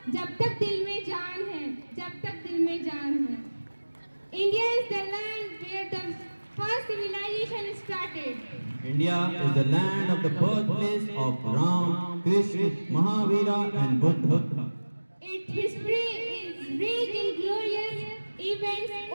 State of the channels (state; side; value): inverted; both; correlation -1.00